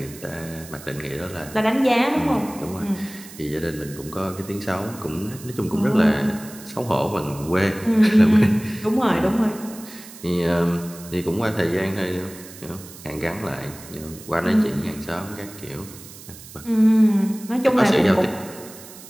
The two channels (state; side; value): noise; right; hiss, 17 dB below the sound